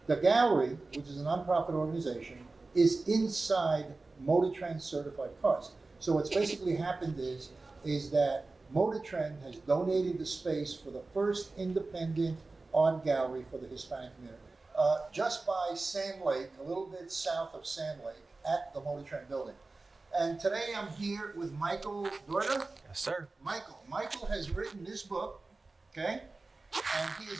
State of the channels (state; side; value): quieter; left; 3.5 dB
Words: the gallery, which is a nonprofit organization, is inside Motor Trend Certified Cars. So what's basically happened is that Motor Trend has donated the space for the first independent art gallery for the Hispanic community. Just by Sand Lake, a little bit south of Sand Lake, at the Motor Trend building. And today I'm here with Michael Dorta. Yes, sir. Michael has written this book, okay? And he is